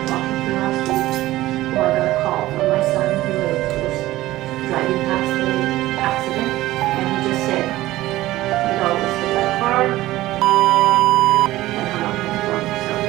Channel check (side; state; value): left; quieter; 16.5 dB